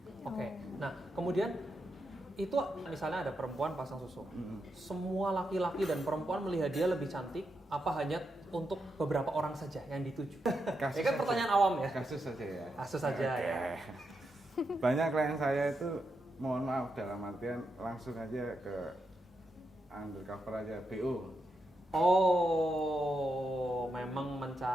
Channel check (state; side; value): normal; both; correlation 0.84